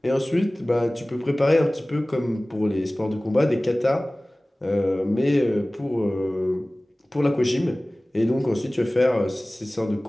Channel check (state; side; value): normal; both; correlation 0.98